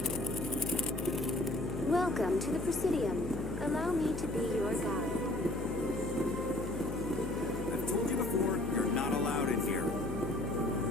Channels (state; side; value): noise; left; hum, 7 dB below the sound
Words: Welcome to the Presidium. Allow me to be your guide. I've told you before, you're not allowed in here.